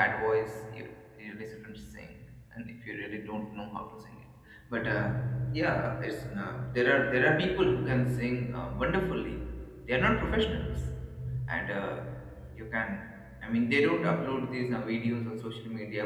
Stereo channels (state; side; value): identical; both; correlation 1.00